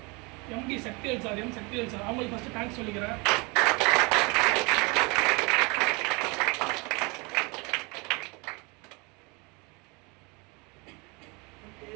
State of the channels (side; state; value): left; quieter; 28.4 dB